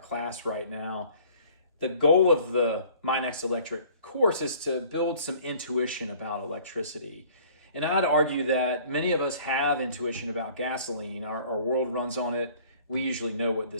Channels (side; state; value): both; inverted; correlation -0.52